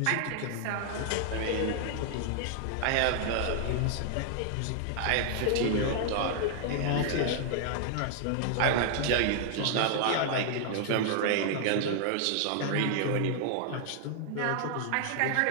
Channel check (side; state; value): both; different; correlation -0.01